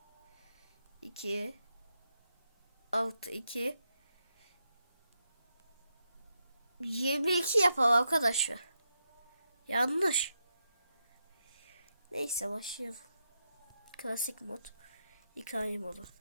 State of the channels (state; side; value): inverted; both; correlation -0.84